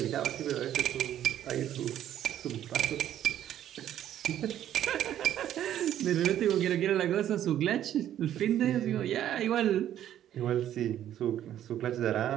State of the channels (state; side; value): quieter; left; 11.3 dB